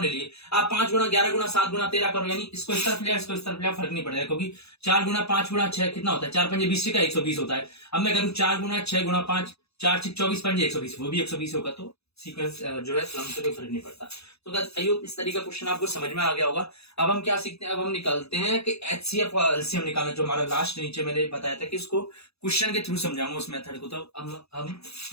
ले लिए। आप 5 गुणा 11 गुणा 7 गुणा 13 करो, यानी इसको इस तरफ लिया, इसको इस तरफ लिया, फर्क नहीं पड़ेगा, क्योंकि 4 गुणा 5 गुणा 6 कितना होता है, 4 पंजे 20 का 120 होता है। अब मैं करूँ 4 गुणा 6 गुणा 5, 4 6 24 पंजे 120, वो भी 120 होगा, तो सीक्वेंस जो है क्रम से कोई फर्क नहीं पड़ता। तो आई होप इस तरीके का क्वेश्चन आपको समझ में आ गया होगा। अब हम क्या सीखते हैं, अब हम निकालते हैं कि एचसीएफ और एलसीएम निकालना, जो हमारा लास्ट नीचे मैंने बताया था कि इसको क्वेश्चन के थ्रू समझाऊंगा उस मेथड को। तो हम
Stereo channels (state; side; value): late; right; 0.79 ms